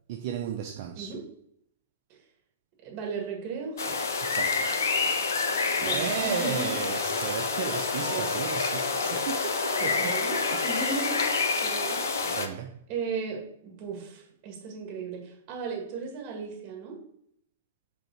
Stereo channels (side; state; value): both; inverted; correlation -0.41